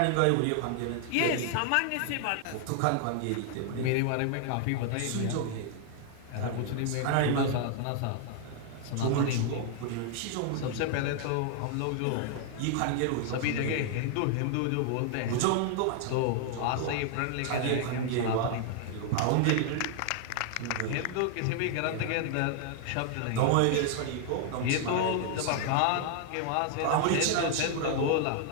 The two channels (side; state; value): both; different; correlation 0.00